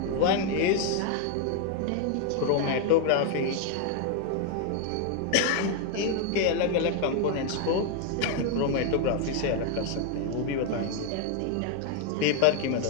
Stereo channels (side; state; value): both; different; correlation 0.00